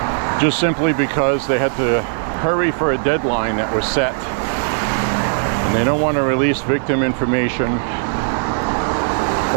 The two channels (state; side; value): silent; left; digital silence